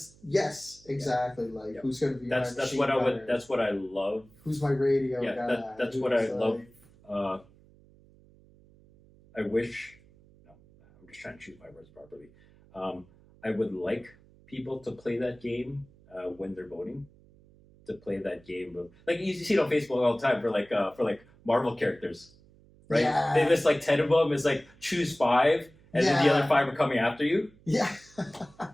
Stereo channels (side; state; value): right; noise; hum, 27 dB below the sound